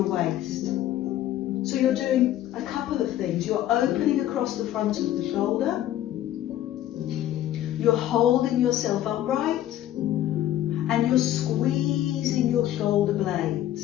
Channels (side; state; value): right; quieter; 12.8 dB